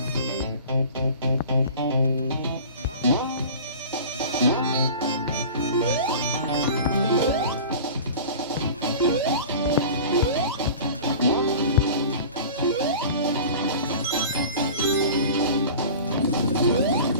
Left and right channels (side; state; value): both; inverted; correlation -0.38